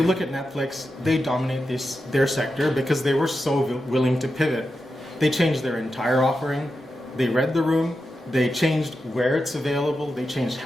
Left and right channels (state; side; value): normal; both; correlation 0.89